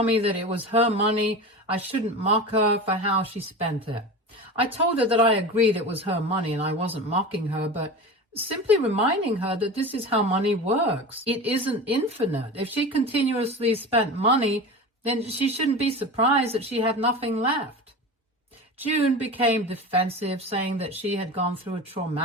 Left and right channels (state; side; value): normal; both; correlation 0.30